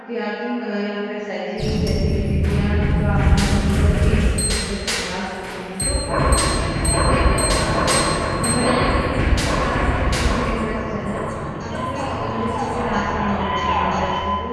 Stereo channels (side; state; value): both; identical; correlation 1.00